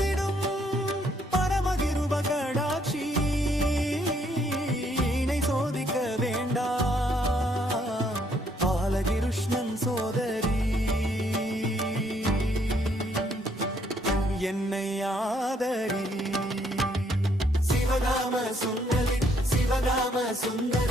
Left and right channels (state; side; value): normal; both; correlation 0.69